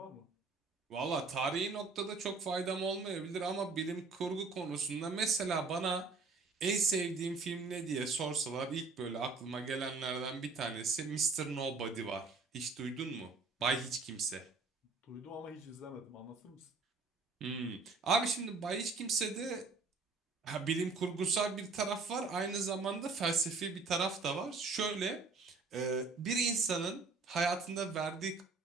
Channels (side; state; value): left; quieter; 4.2 dB